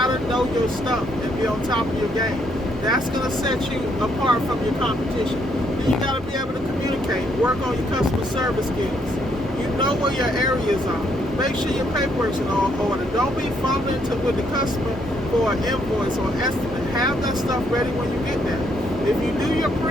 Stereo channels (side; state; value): both; normal; correlation 0.72